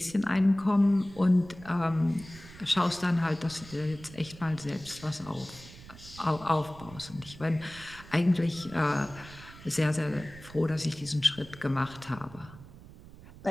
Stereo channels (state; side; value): noise; right; rumble, 18 dB below the sound